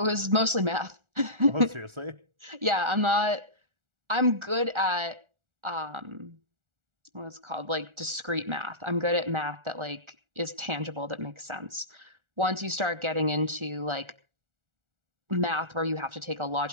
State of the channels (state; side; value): late; left; 1.4 ms